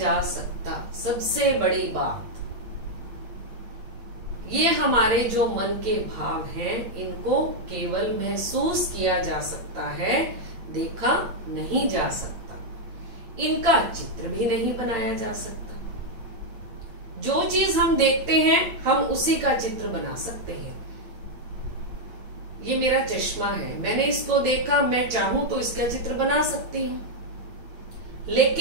सकता। सबसे बड़ी बात, ये हमारे जो मन के भाव हैं, इनको केवल महसूस किया जा सकता है, देखा नहीं जा सकता। इनका चित्र भी नहीं बनाया जा सकता। जो चीज हम देखते हैं, हम उसी का चित्र बना सकते हैं। ये मेरा चश्मा है, मैंने इसको देखा, मैं चाहूं तो इसका चित्र बना सकती हूं।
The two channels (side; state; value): left; late; 8.9 ms